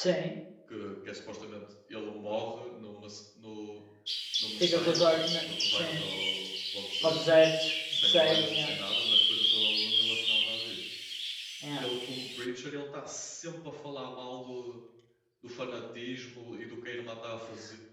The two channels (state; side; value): identical; both; correlation 1.00